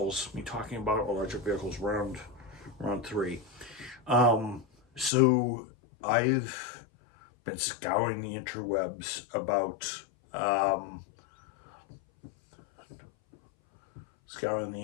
talking about electric vehicles round 3. So I've been scouring the interwebs about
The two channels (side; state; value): right; drops out; at 5.1 s